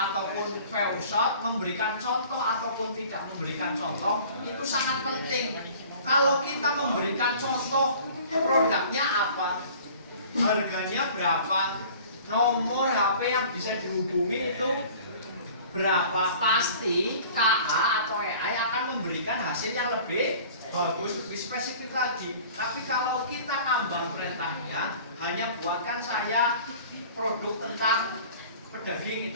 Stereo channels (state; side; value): inverted; both; correlation -0.47